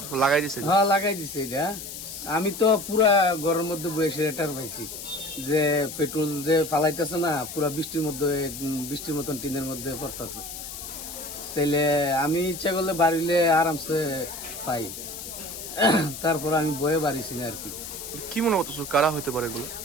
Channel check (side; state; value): left; noise; hiss, 9 dB below the sound